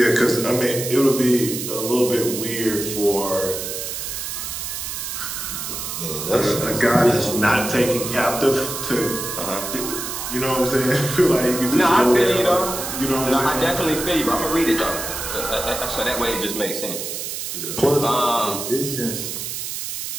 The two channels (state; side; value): noise; right; hiss, 5 dB below the sound